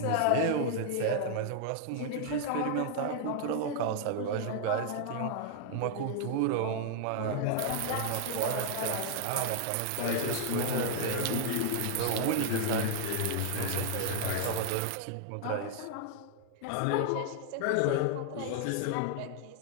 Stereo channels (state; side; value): different; both; correlation 0.00